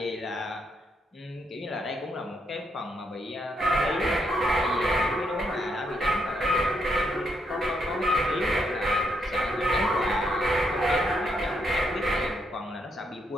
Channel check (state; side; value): normal; both; correlation 0.77